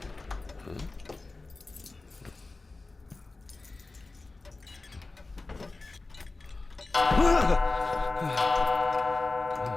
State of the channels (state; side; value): quieter; right; 3.4 dB